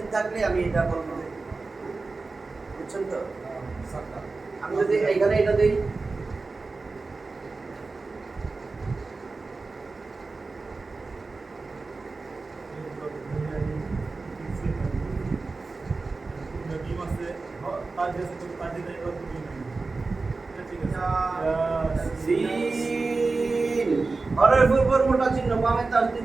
থাকলে আমি এটা বলবো। বুঝছেন তো? আমি যদি এইখানে এটা দেই, নবীম আছে তার কাছে তো তার দিনে আর কিছু নেই। এটা ঠিক আছে। সিন হরফের উপর মোটা চিহ্ন বামে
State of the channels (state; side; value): quieter; left; 3.8 dB